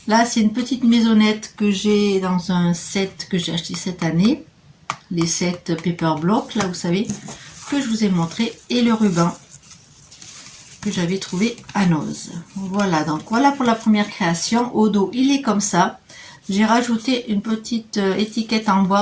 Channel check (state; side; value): identical; both; correlation 1.00